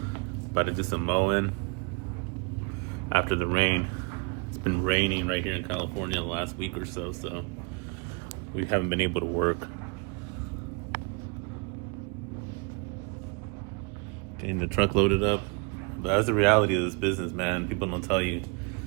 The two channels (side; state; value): left; quieter; 33.5 dB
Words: About to do some mowing after the rain. It's been raining right here in California the last week or so, so we haven't been able to work. Getting the truck loaded up. But that's the reality of this business, man. People don't tell you